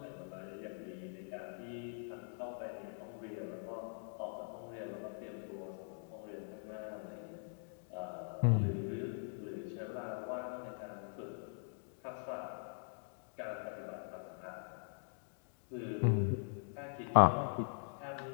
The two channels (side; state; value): right; silent; digital silence